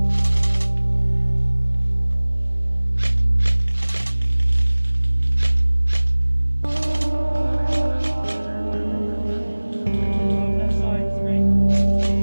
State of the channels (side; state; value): both; inverted; correlation -1.00